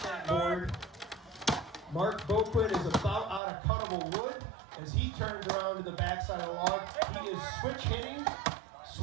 that board. Mark Boquin is about out of cuttable wood as he turns around to the backside of the log. He is switch hitting,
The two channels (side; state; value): left; drops out; at 3.4 s